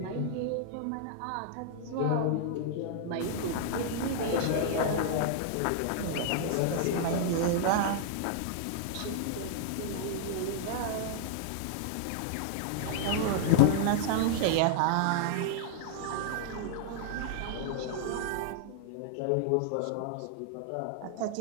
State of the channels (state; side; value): different; both; correlation -0.01